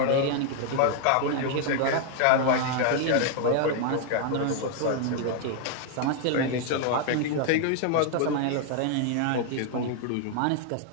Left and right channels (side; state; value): both; different; correlation 0.00